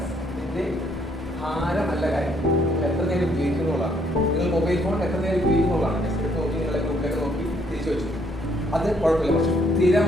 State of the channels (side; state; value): both; normal; correlation 0.68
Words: ഇതിന്റെ ഭാരമല്ല കാര്യം. നിങ്ങൾ എത്ര നേരം ഉപയോഗിക്കുന്നുള്ളതാണ്. നിങ്ങൾ മൊബൈൽ ഫോൺ എത്ര നേരം ഉപയോഗിക്കുന്നുള്ളതാണ്. നെക്സ്റ്റ് നോക്കി നിങ്ങളെ ഗ്രൂപ്പിലൊക്കെ നോക്കി തിരിച്ചു വെച്ചു. അത് കുഴപ്പമില്ല. പക്ഷെ